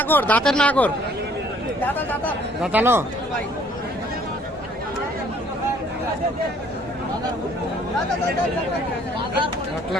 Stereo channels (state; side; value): normal; both; correlation 0.60